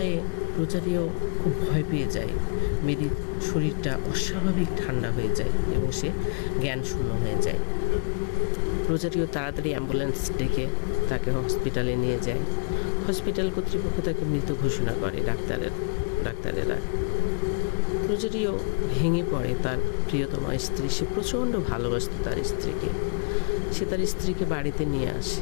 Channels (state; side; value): silent; right; digital silence